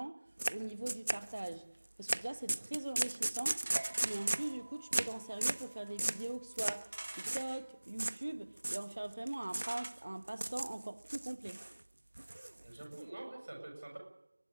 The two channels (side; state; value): both; inverted; correlation -1.00